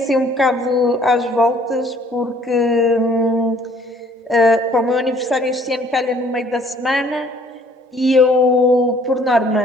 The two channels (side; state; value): both; normal; correlation 0.59